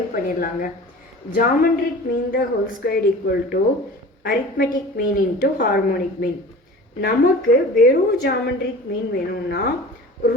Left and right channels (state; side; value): normal; both; correlation 0.39